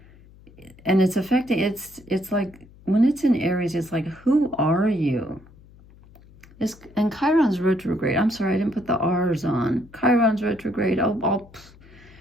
And it's affecting, it's like, when it's in Aries, it's like, who are you? And Chiron's retrograde. I'm sorry, I didn't put the R's on. Chiron's retrograde.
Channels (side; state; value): left; noise; hum, 24 dB below the sound